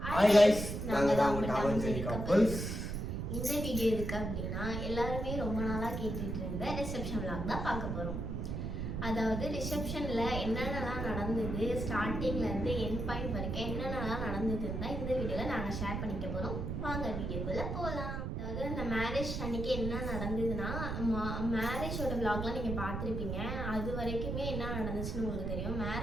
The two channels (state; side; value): noise; right; rumble, 3 dB below the sound